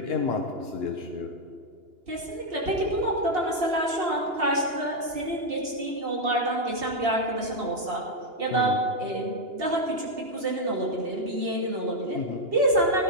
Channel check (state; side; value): late; left; 2.8 ms